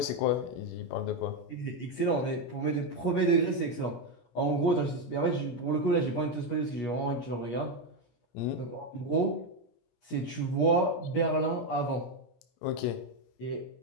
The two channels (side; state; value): right; late; 17 ms